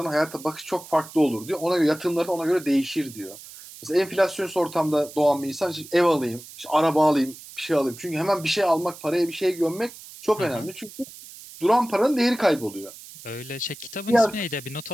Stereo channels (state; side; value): noise; right; hiss, 17 dB below the sound